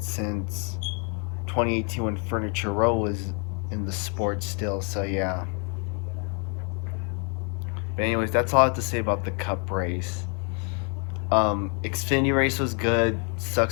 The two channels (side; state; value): right; quieter; 37.7 dB